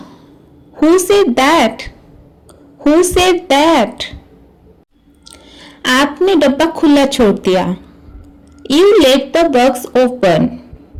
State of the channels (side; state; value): both; identical; correlation 1.00